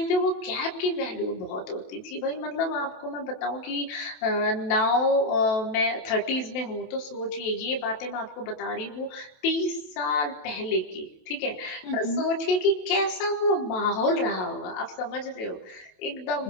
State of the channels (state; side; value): late; right; 27 ms